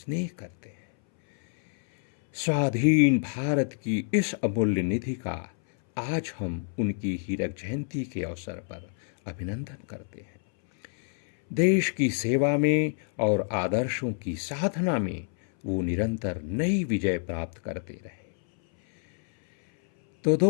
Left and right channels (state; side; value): silent; right; 60 dB below the other